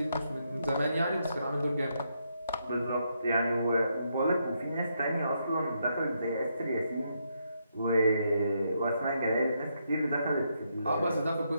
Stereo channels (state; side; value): inverted; both; correlation -0.78